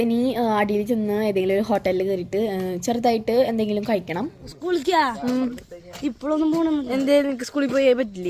ഇനി അടിയിൽ ചെന്ന് ഏതെങ്കിലും ഒരു ഹോട്ടലിൽ കയറിയിട്ട് ചെറുതായിട്ട് എന്തെങ്കിലും കഴിക്കണം. സ്കൂളിക്കാ ഇപ്പോഴൊന്നും പോകണം. എന്തേലും സ്കൂളിൽ പോയേ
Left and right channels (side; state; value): both; identical; correlation 1.00